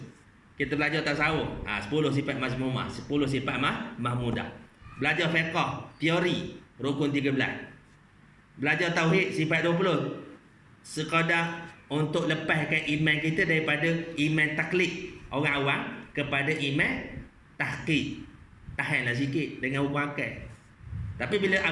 Kita belajar tasawuf, 10 sifat mazmumah, 10 sifat mahmudah. Belajar fiqh, teori, rukun 13. Belajar tauhid, sifat 20. Sekadar untuk lepaskan iman kita daripada iman taklid orang awam kepada iman tahqiq. Tahanlah sikit dengan hukum akal. Tapi bila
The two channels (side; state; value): both; identical; correlation 1.00